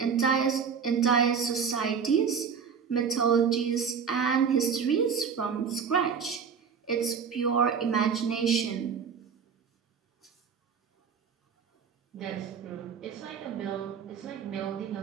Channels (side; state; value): left; quieter; 6.6 dB